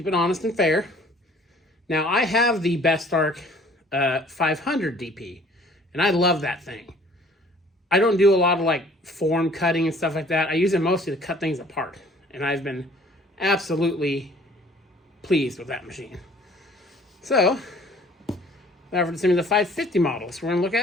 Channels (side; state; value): both; normal; correlation 0.54